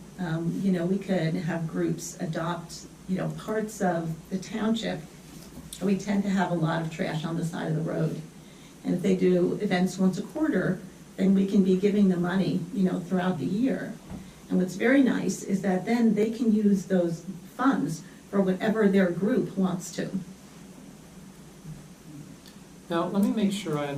You know, we could have groups adopt, you know, parts of the township. We tend to have a lot of trash on the side of the road. And if they do events once a quarter, then we can be giving them money, you know, throughout the year. And what's very nice is that then they can use those funds for whatever their group wants to. Now, let me make sure I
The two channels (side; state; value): both; identical; correlation 1.00